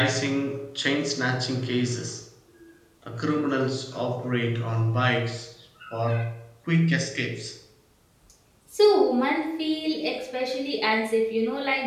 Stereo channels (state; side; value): identical; both; correlation 1.00